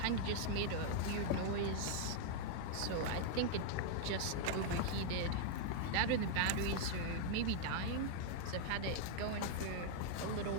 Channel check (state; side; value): different; both; correlation -0.01